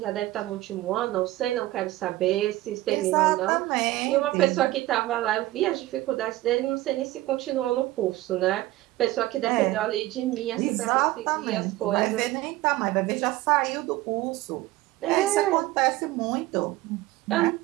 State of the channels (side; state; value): left; quieter; 17.0 dB